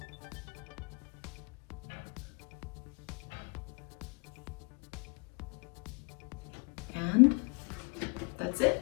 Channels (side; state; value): right; quieter; 33.1 dB